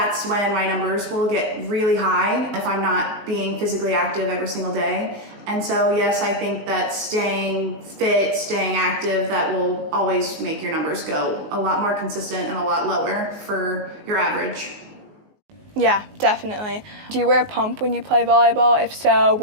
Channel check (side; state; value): left; late; 19 ms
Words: when my numbers will get really high if I'm not being physically active every single day. And so yes, I think that staying fit, staying active, that will always make your numbers go a lot more consistent and a lot lower for your average. Yeah, definitely. Do you wear a pump when you play volleyball? If so,